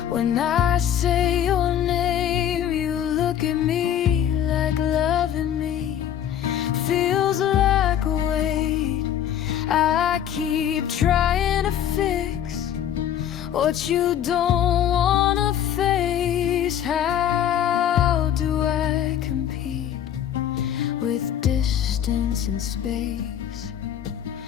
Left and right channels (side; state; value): right; quieter; 10.0 dB